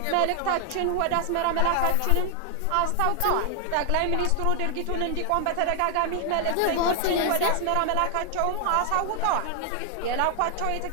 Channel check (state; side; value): different; both; correlation 0.00